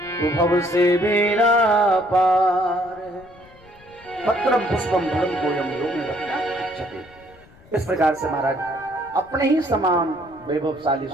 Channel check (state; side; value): noise; left; rumble, 26 dB below the sound